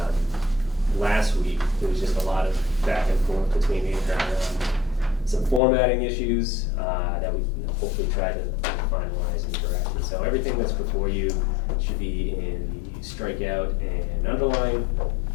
Last week, there was just a lot of back and forth between the some formatting issues that we hopefully try to finalize and correct. And so everything that's before you should be in the strikeout and underline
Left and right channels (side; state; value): right; drops out; at 5.6 s